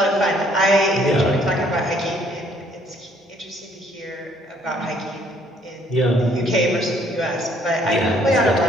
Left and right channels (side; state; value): both; normal; correlation 0.64